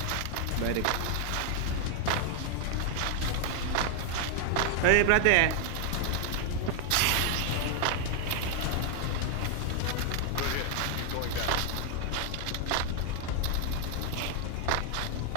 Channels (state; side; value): different; both; correlation 0.00